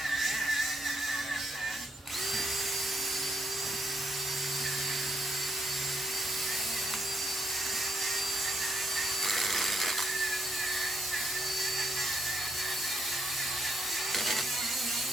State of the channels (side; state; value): both; normal; correlation 0.75